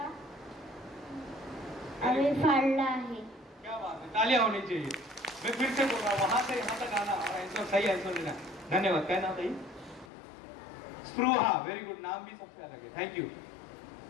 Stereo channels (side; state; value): right; drops out; at 10.1 s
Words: आम्ही फाडला आहे। क्या बात है, तालियां होनी चाहिए। मैं फिर से बोल रहा हूँ, वहां से यहाँ तक आना और आंसर सही आंसर देना। धन्यवाद। क्या नाम था ये? स्पृहा, वेरी गुड, नाम भी सबसे अलग है, थैंक यू।